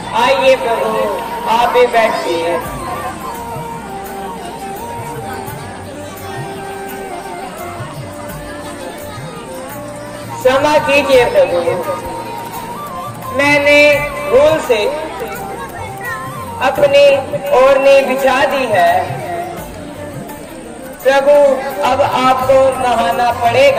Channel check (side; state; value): both; identical; correlation 1.00